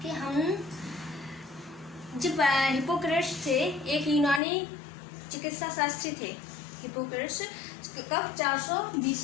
कि हम जब हिप्पोक्रेट्स थे, एक यूनानी चिकित्सा शास्त्री थे हिप्पोक्रेट्स। कब? 400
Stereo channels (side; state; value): right; drops out; at 4.4 s